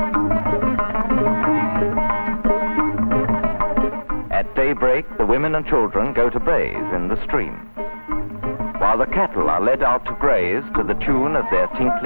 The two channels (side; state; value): both; inverted; correlation -1.00